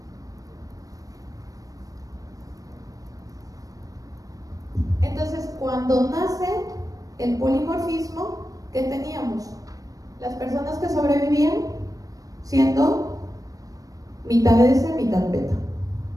Entonces, cuando nace el polimorfismo, ¿qué teníamos? Las personas que sobrevivían siendo mitad S, mitad beta.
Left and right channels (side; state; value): left; late; 0.17 ms